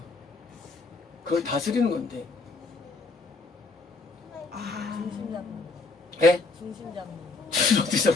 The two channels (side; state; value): right; quieter; 3.6 dB